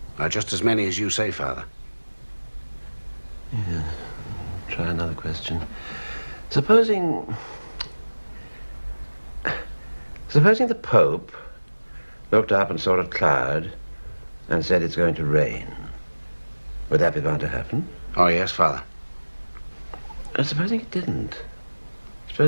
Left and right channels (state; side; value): inverted; both; correlation -1.00